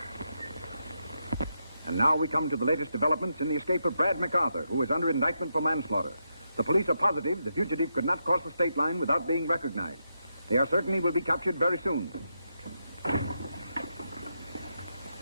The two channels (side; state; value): both; inverted; correlation -0.83